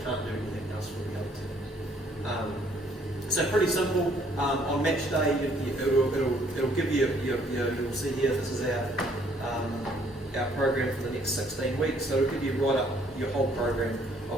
can't do anything else for the other teams. So pretty simple. On match day, it'll give you you'll see here. This is our program for the next 16 weeks. So it'll give you right up your whole program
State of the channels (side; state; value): both; normal; correlation 0.64